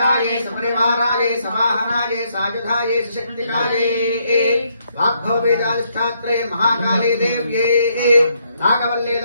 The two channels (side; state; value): both; inverted; correlation -0.74